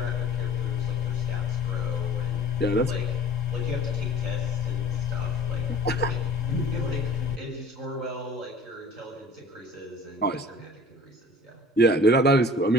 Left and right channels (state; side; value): normal; both; correlation 0.46